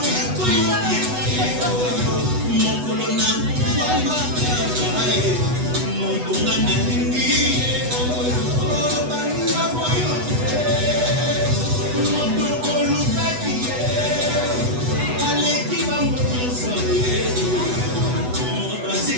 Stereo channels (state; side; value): late; left; 8.1 ms